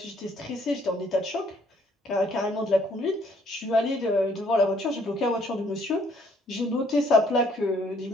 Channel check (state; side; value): normal; both; correlation 0.64